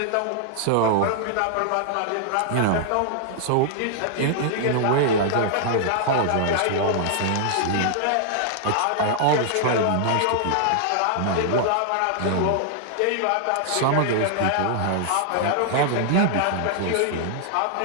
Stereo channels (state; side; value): different; both; correlation -0.01